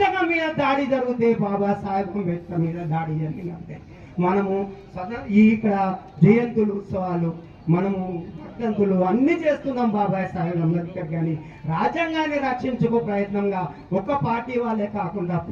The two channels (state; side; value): identical; both; correlation 1.00